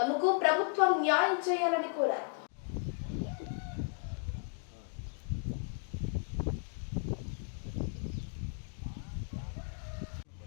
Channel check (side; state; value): right; silent; 54 dB below the other